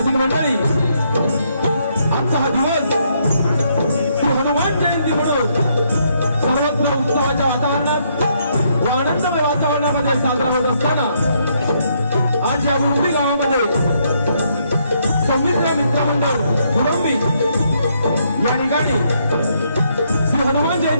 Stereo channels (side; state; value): both; inverted; correlation -0.73